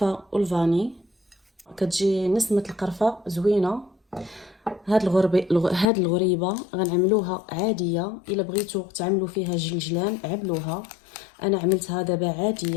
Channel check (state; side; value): drops out; right; at 5.9 s